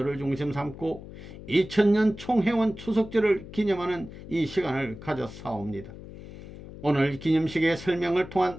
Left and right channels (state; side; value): noise; left; hum, 14 dB below the sound